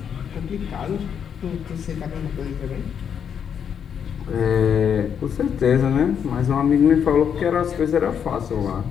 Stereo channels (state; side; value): quieter; right; 7.9 dB